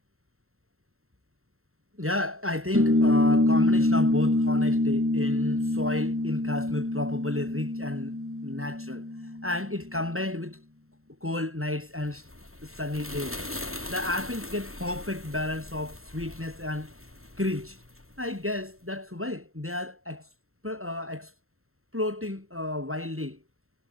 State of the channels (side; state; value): left; late; 0.62 ms